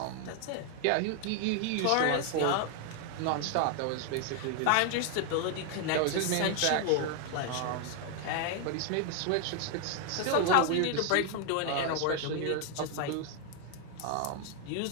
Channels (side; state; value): both; different; correlation 0.00